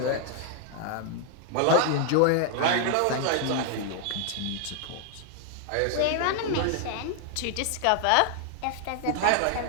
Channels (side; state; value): both; different; correlation 0.00